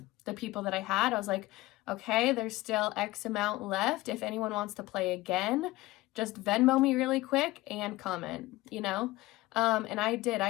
the people that I had, I was like, okay, there's still X amount left. If anyone wants to play again, just Venmo me really quick and comment, you know? And I did.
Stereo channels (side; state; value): right; quieter; 18.9 dB